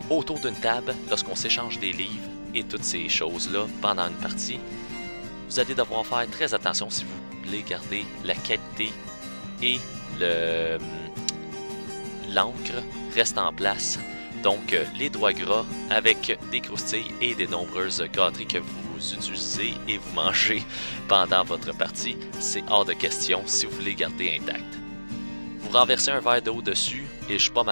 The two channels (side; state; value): both; inverted; correlation -1.00